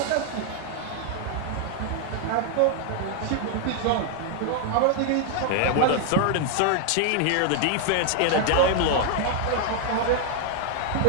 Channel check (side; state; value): both; different; correlation 0.00